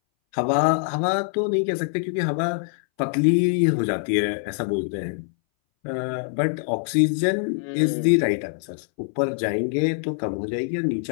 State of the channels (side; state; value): right; silent; 61 dB below the other